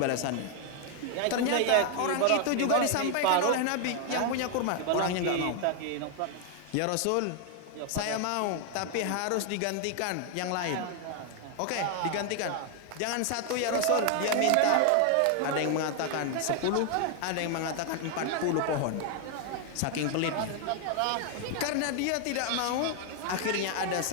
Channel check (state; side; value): different; both; correlation 0.00